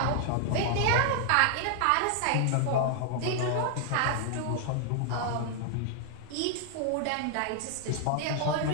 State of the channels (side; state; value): both; different; correlation 0.00